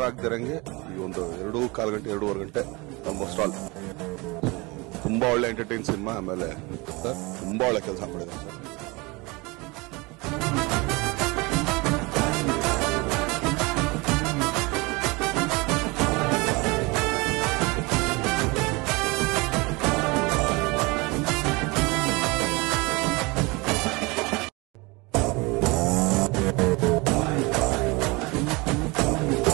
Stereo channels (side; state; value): left; quieter; 25.6 dB